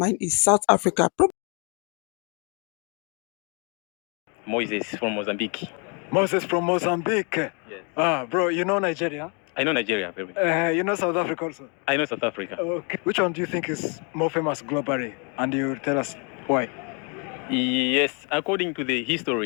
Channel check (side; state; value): right; quieter; 35.3 dB